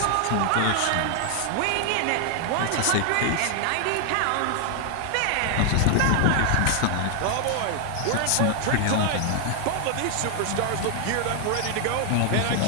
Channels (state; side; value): different; both; correlation 0.00